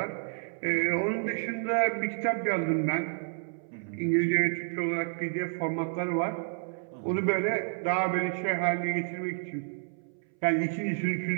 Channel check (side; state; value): left; silent; 58 dB below the other